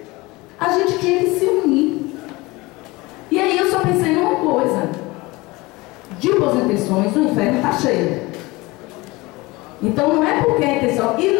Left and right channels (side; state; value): right; quieter; 22.4 dB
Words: a gente tinha que se unir. E aí eu só pensei numa coisa: de boas intenções, o inferno está cheio. Então não é porque a intenção. E